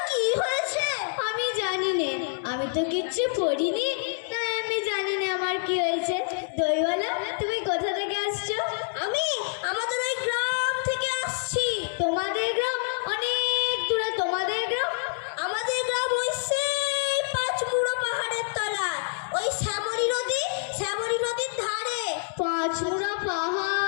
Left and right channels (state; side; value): silent; right; digital silence